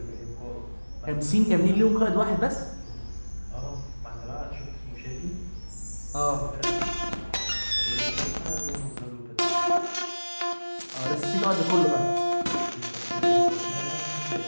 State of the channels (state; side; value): inverted; both; correlation -1.00